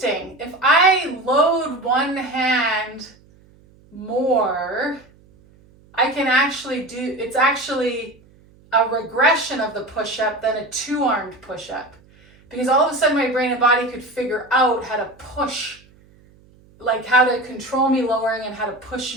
If I load one hand more, I can actually do, it's actually a regression of the push-up than a two-armed push-up. Because all of a sudden my brain and body could figure out how to push, like how to control me lowering and how to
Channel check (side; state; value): right; noise; hum, 28 dB below the sound